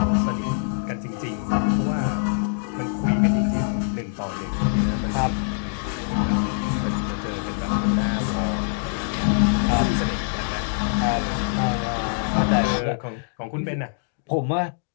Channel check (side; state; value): right; silent; digital silence